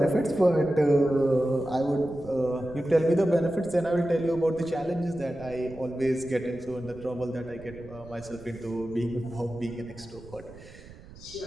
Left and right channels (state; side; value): noise; right; rumble, 19 dB below the sound